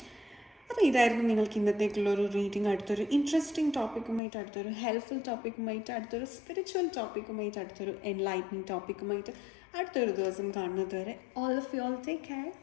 അപ്പോൾ ഇതായിരുന്നു നിങ്ങൾക്ക് ഇന്നത്തേക്കുള്ളൊരു റീഡിംഗ്. അടുത്തൊരു ഇൻട്രസ്റ്റിംഗ് ടോപ്പിക്കുമായിട്ട്, അടുത്തൊരു ഹെൽപ്ഫുൾ ടോപ്പിക്കുമായിട്ട്, അടുത്തൊരു സ്പിരിച്വൽ ടോപ്പിക്കുമായിട്ട്, അടുത്തൊരു എൻലൈറ്റനിങ് ടോപ്പിക്കുമായിട്ട് അടുത്തൊരു ദിവസം കാണുന്നത് വരെ all of you all take care.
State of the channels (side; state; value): right; drops out; at 4.2 s